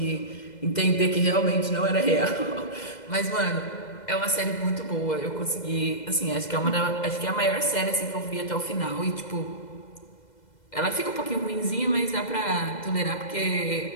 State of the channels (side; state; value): right; late; 2.0 ms